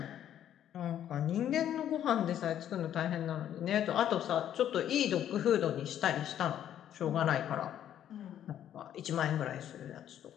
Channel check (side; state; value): right; quieter; 10.6 dB